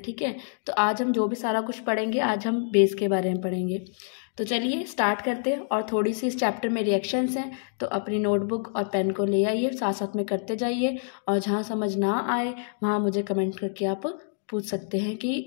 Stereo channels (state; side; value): silent; right; digital silence